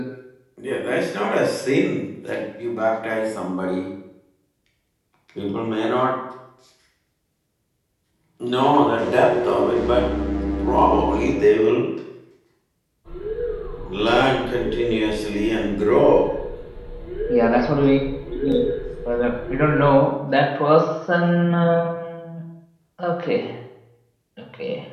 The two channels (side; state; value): both; identical; correlation 1.00